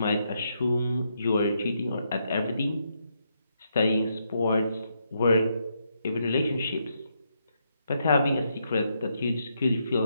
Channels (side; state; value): both; inverted; correlation -0.79